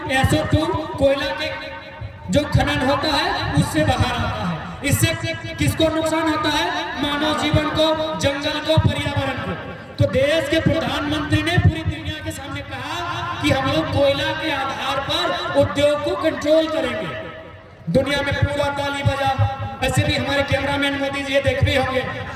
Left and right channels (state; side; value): identical; both; correlation 1.00